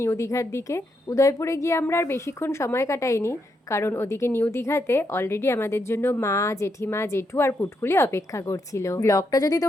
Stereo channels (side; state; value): both; normal; correlation 0.80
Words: দীঘার দিকে। উদয়পুরে গিয়ে আমরা আর বেশিক্ষণ সময় কাটাইনি, কারণ ওদিকে নিউ দীঘাতে অলরেডি আমাদের জন্য মা, জেঠিমা, জেঠু আর পুটকুলি অপেক্ষা করছিল। ব্লগটা যদি